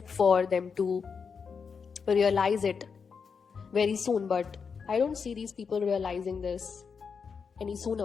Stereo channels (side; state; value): right; quieter; 5.8 dB